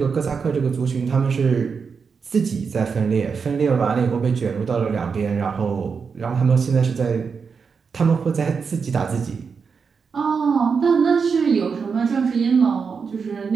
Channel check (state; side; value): quieter; left; 5.6 dB